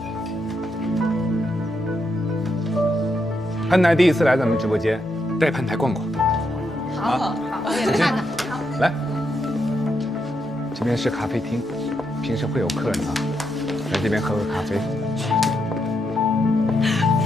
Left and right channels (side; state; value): both; normal; correlation 0.81